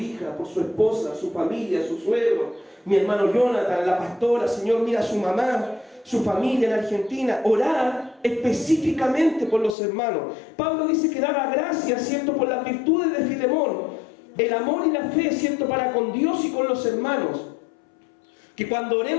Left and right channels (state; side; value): drops out; right; at 9.8 s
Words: por su esposa, su familia, su suegro, mi hermano Jonathan, la pastora, Señor, mira a su mamá, su familia en Argentina. Orar específicamente por los hermanos. Pablo dice que daba gracias, ¿cierto?, por las virtudes de Filemón, el amor y la fe, ¿cierto?, para con Dios y con los hermanos. Que cuando